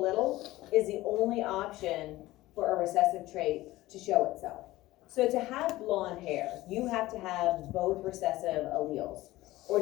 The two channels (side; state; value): right; quieter; 17.4 dB